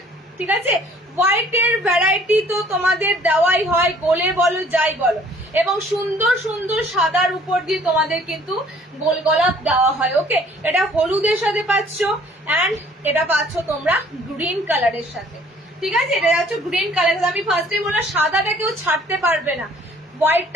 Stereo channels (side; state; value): both; normal; correlation 0.56